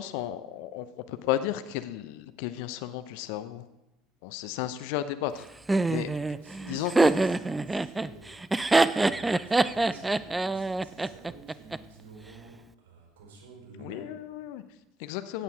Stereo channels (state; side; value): normal; both; correlation 0.77